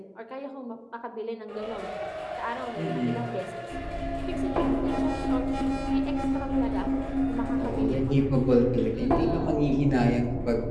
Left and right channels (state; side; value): identical; both; correlation 1.00